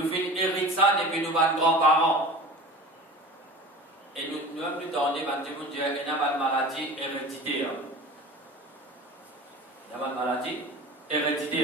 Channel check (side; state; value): both; normal; correlation 0.37